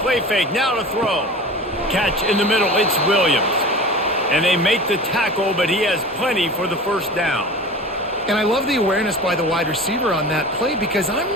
fake, now to throw. Catch in the middle, it's Williams. And they make the tackle, but he has plenty for the first down. And I love the awareness by the wide receiver on that play because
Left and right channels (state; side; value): normal; both; correlation 0.36